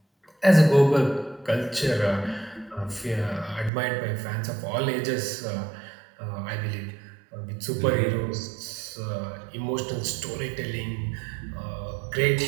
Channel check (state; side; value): drops out; left; at 3.7 s